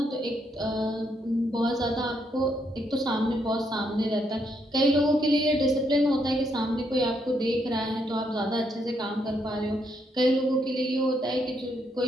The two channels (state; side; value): normal; both; correlation 0.76